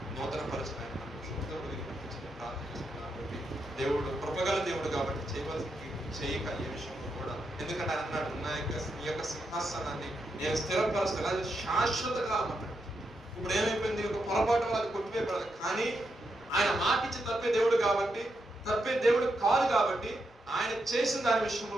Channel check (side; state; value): both; normal; correlation 0.83